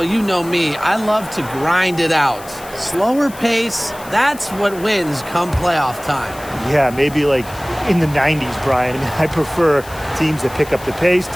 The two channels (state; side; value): noise; left; hiss, 18 dB below the sound